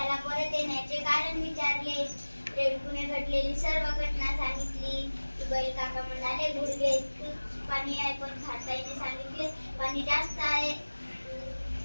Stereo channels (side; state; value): both; inverted; correlation -1.00